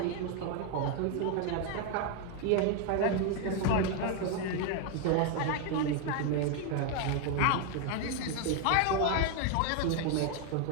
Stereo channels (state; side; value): different; both; correlation 0.01